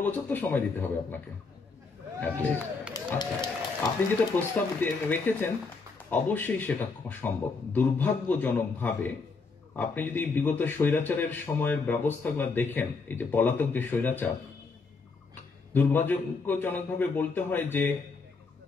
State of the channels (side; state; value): right; quieter; 4.4 dB